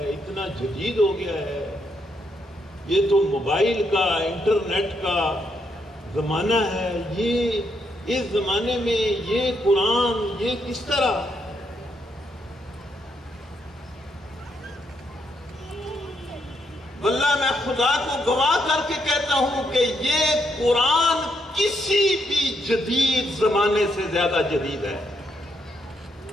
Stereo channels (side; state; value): both; normal; correlation 0.77